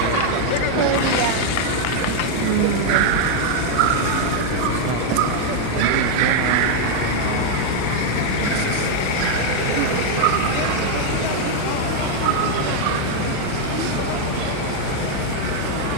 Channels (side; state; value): both; different; correlation 0.00